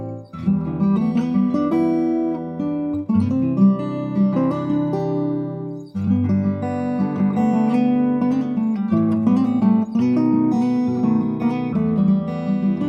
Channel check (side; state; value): both; identical; correlation 1.00